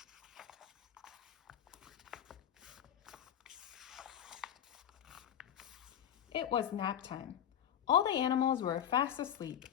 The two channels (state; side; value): quieter; right; 9.8 dB